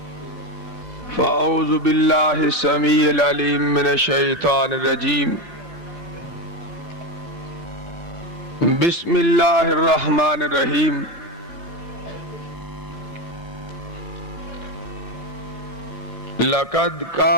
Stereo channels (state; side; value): normal; both; correlation 0.15